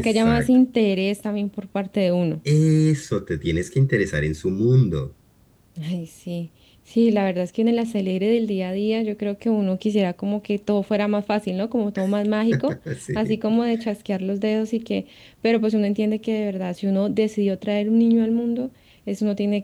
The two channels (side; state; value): both; identical; correlation 1.00